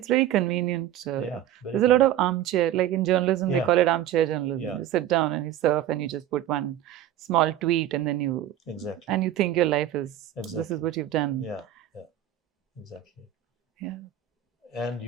very convenient. There's a lot of armchair, like in journalism, they call it armchair journalism. You sit down and you surf and you just put one small tweet and then you and you think your life is this is what you've done. Yeah, exactly. Yeah. And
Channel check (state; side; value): quieter; left; 11.8 dB